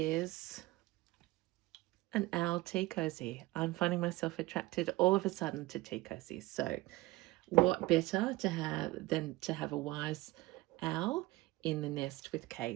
an owl tea cozy. I'm finding myself attracted all of a sudden to tea cozies. So what better to have than to have a wise owl in the nest with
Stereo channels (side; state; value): left; quieter; 19.8 dB